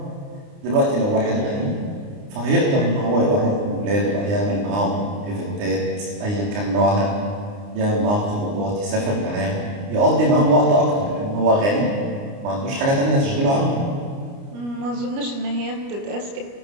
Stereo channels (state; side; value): late; left; 29 ms